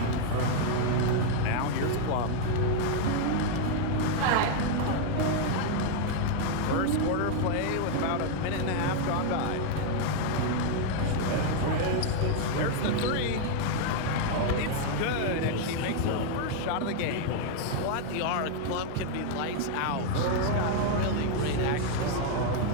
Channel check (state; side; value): different; both; correlation 0.00